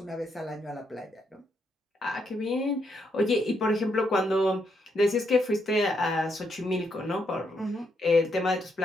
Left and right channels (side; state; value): both; normal; correlation 0.77